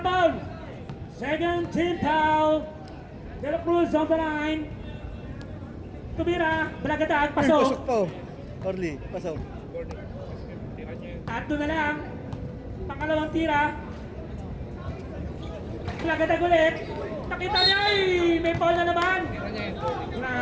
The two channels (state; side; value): identical; both; correlation 1.00